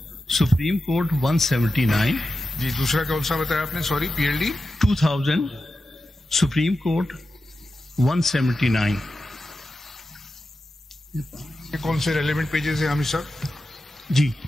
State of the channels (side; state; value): both; normal; correlation 0.91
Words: Supreme Court 179 जी. दूसरा कौन सा बताया आपने? Sorry, PLD 2000 Supreme Court 179. ये कौन से रेलेवेंट पेजेस है हमें सर? जी